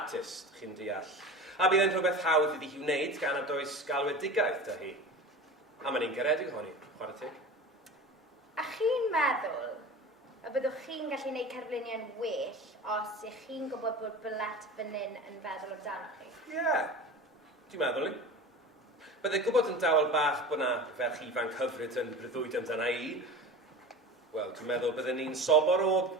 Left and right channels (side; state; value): both; normal; correlation 0.33